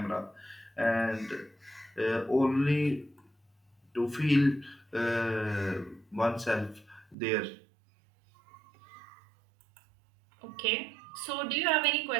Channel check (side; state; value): left; drops out; at 7.2 s